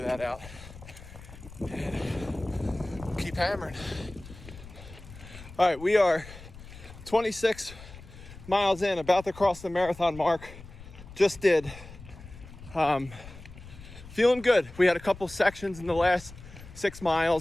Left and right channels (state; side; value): noise; left; rumble, 17 dB below the sound